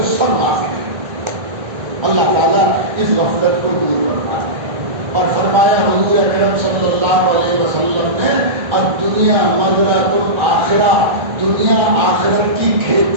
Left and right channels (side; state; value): left; late; 1.4 ms